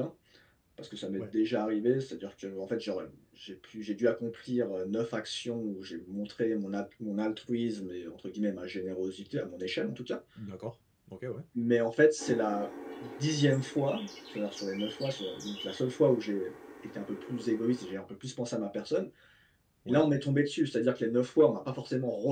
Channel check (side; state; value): both; identical; correlation 1.00